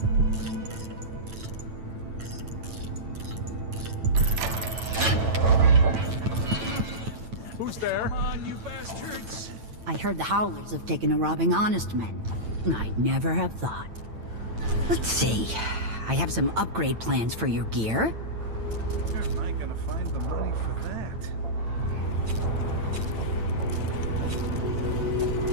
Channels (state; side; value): late; left; 9.0 ms